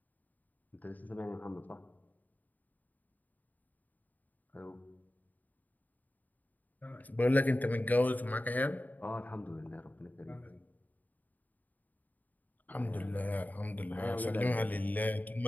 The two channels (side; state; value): right; late; 0.082 ms